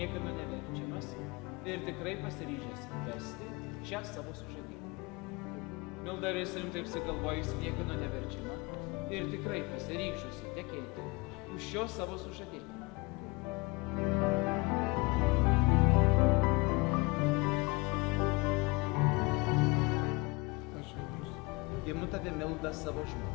neverčiamas ir tikrai pasiryžęs vesti šią savo sužadėtę? Milda, ar esi rimtai apsigalvojęs, niekieno neverčiama ir tikrai pasiryžusi tekėti už šio savo sužadėtę? Imu tave, Milda, savo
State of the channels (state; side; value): quieter; right; 25.9 dB